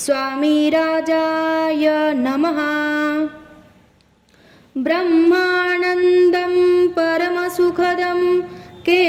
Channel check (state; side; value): identical; both; correlation 1.00